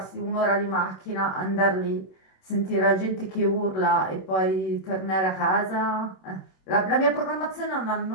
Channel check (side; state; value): right; late; 27 ms